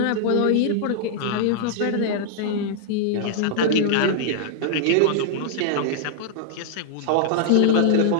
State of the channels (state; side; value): different; both; correlation -0.01